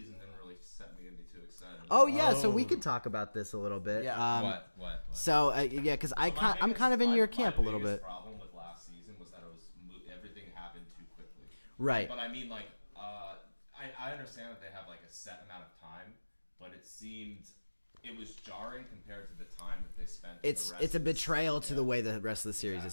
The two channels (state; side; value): inverted; both; correlation -1.00